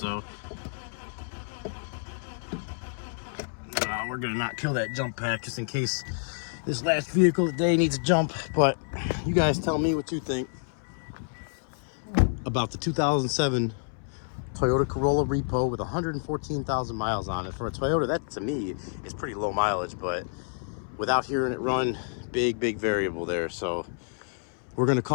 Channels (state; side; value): silent; right; 59 dB below the other